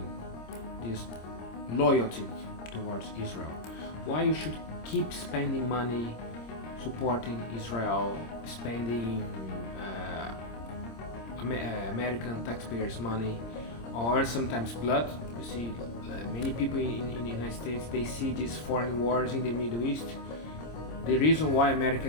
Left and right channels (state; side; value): late; right; 26 ms